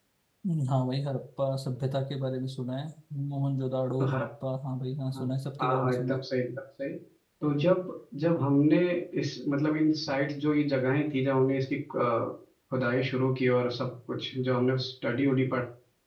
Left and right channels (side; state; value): both; identical; correlation 1.00